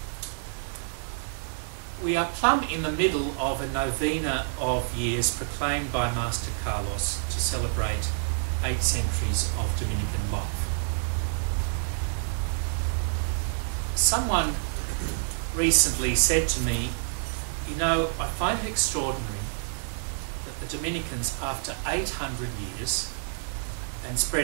We are plumb in the middle of a novena of years proclaimed by Master Carlos to celebrate 8 centuries of Dominican life. Someone recently said to me, you know, I find it extraordinary that the Dominicans, after 800 years and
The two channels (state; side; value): silent; left; digital silence